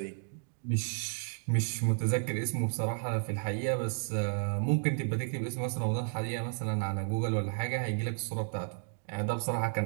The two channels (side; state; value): left; silent; digital silence